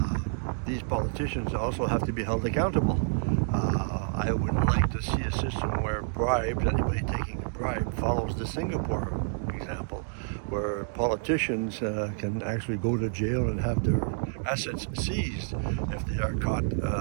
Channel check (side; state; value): left; silent; digital silence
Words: These politicians also have to be held accountable. I would like to see a system where bribes, anybody taking a bribe, follows the Singapore example, where politicians can actually go to jail and have their assets seized if they are caught